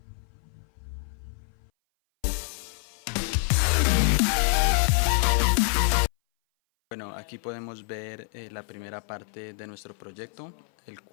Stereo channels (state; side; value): silent; right; 58 dB below the other